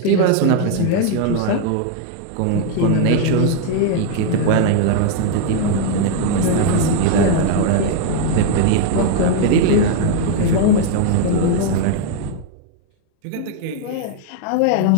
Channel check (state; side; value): different; both; correlation 0.00